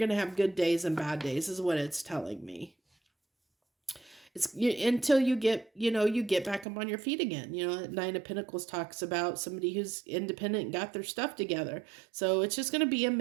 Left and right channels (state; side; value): drops out; left; at 6.7 s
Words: to have good days and bad days is what it's telling me. It's until you get back up on your feet again. Nine of Pentacles talks about somebody who's independent and got their stuff together. So it's just going to be a